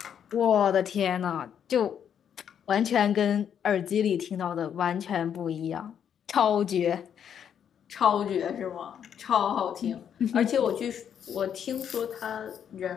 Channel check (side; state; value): right; quieter; 8.6 dB